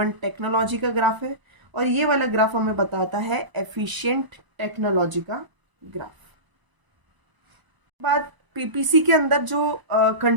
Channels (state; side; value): late; left; 1.0 ms